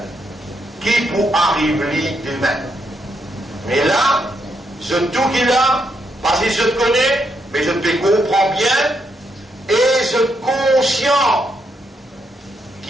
qui pour arriver demain. Mais là, je tout qu'il a, parce que je te connais, mais je te comprends bien, et je suis conscient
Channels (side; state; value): both; normal; correlation 0.79